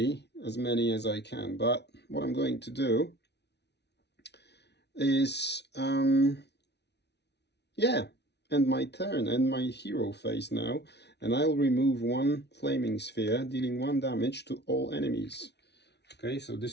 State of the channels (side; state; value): right; late; 0.50 ms